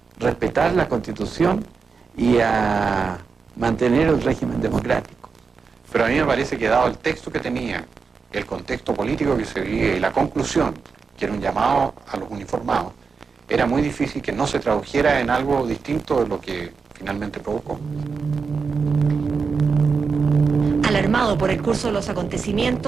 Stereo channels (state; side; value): quieter; left; 5.2 dB